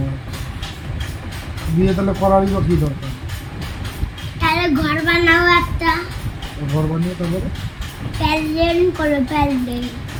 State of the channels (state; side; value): identical; both; correlation 1.00